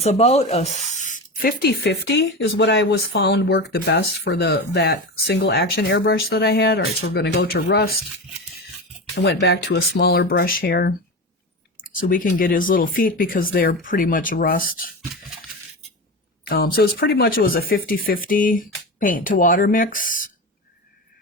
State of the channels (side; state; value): both; normal; correlation 0.23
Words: about a 50-50 is what I was found worked the best for that single action airbrush that I had. All right, so we're going to go to rust. I went back to a smaller brush here so we can get his little feet because they're pretty much rust. So it was a 50-50 paint to water mix